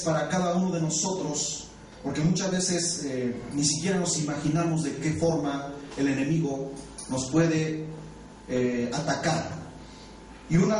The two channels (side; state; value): both; identical; correlation 1.00